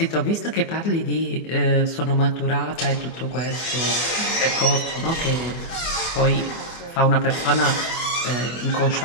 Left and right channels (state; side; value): late; right; 24 ms